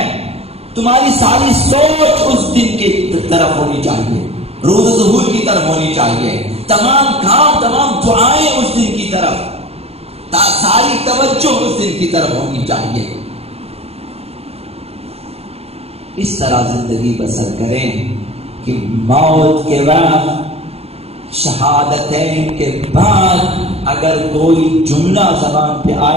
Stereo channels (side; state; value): left; late; 0.29 ms